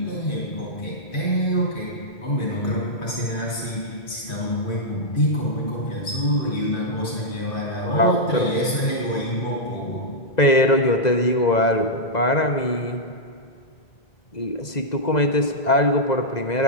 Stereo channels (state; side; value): late; right; 2.0 ms